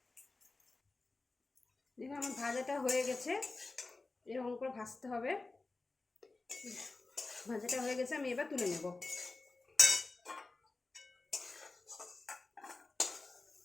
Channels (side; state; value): right; quieter; 3.5 dB